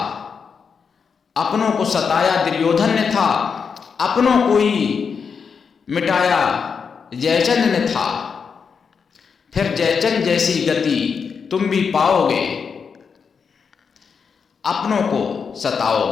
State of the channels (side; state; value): right; quieter; 6.0 dB